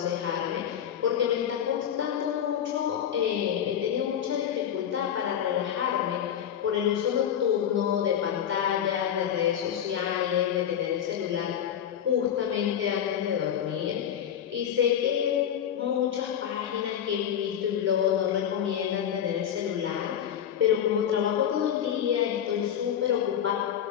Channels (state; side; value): quieter; right; 9.4 dB